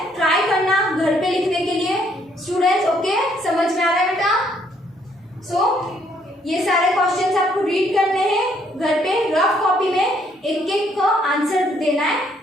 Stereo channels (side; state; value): both; normal; correlation 0.68